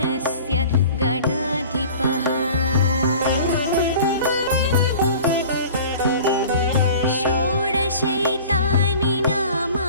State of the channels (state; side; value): inverted; both; correlation -0.43